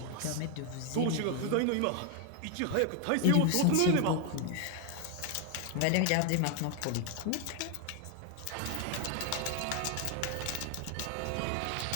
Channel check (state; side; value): different; both; correlation 0.01